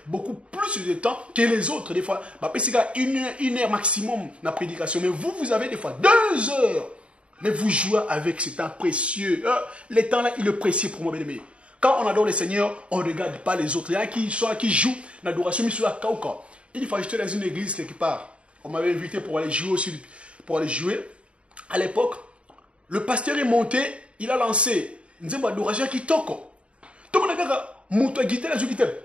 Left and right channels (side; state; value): left; late; 0.060 ms